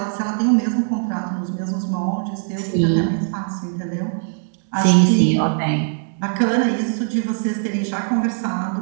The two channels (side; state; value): left; silent; digital silence